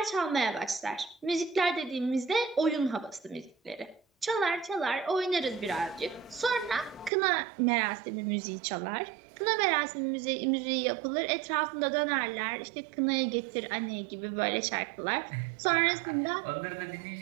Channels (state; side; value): drops out; left; at 7.1 s